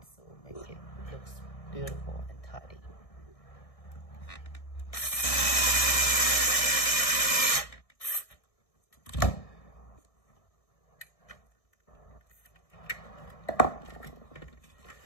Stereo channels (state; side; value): late; right; 1.6 ms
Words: so make it looks beautiful and tidy.